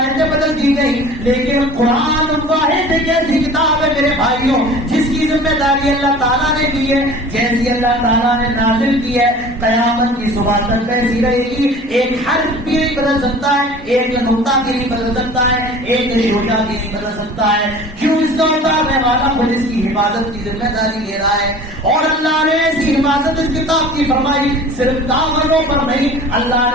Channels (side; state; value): both; normal; correlation 0.43